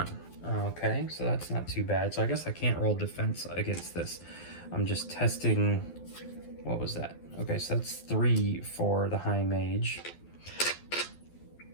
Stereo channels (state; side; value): late; right; 12 ms